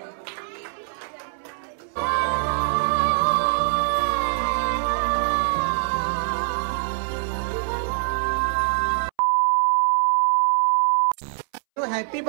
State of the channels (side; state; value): left; silent; 63 dB below the other